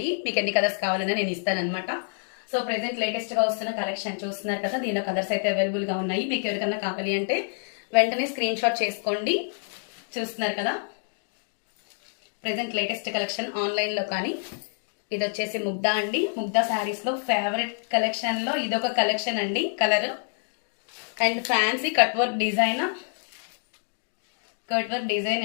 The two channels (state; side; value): silent; right; digital silence